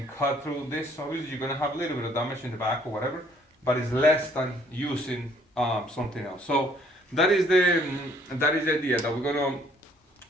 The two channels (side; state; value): both; normal; correlation 0.62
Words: cut through this. Obviously, you're going to have a little bit of damage in the back or whatever, but it's less than using something else. So that is the idea that we're going